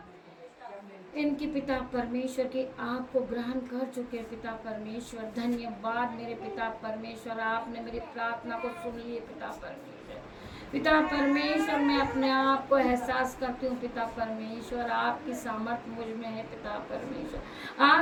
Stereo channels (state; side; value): identical; both; correlation 1.00